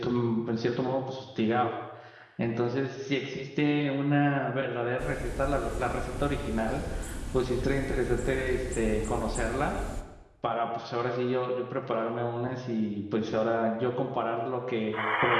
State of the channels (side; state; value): both; identical; correlation 1.00